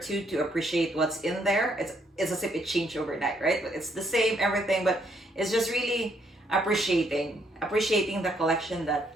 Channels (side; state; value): both; normal; correlation 0.71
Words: to appreciate what's in there. It's as if it changed overnight, right? But it's the same everything, but it's just really appreciating the collection